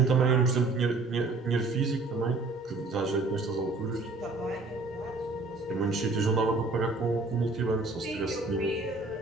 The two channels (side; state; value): left; quieter; 3.4 dB